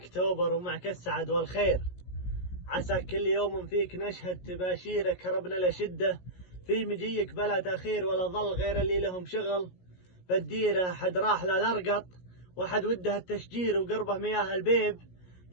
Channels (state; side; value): late; right; 17 ms